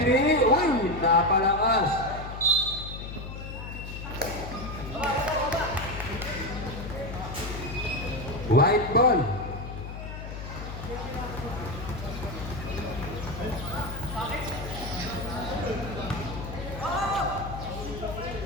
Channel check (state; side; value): noise; left; hum, 9 dB below the sound